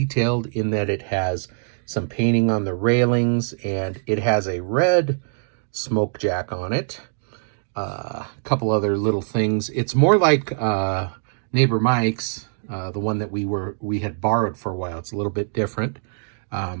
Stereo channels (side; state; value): left; silent; digital silence